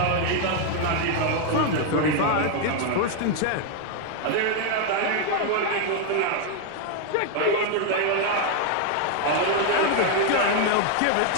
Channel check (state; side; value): different; both; correlation 0.01